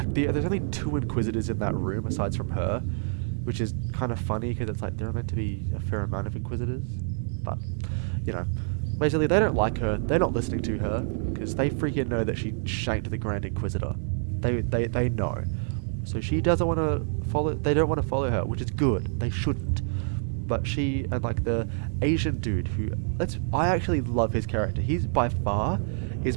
only 2 Inquisitors in that room aside from her, which is kind of funny because it's like there are meant to be a fair amount of Inquisitors, but basically they don't like her, they're not listening to her because they freaking know that she shanked the Grand Inquisitor. They know, so she doesn't want to follow. They don't want to follow her, which is good. They shouldn't. But she and like the Asian dude who I actually love his character. He's by far is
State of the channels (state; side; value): silent; left; digital silence